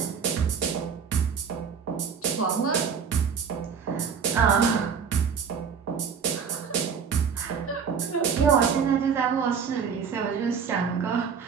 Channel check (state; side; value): quieter; left; 6.5 dB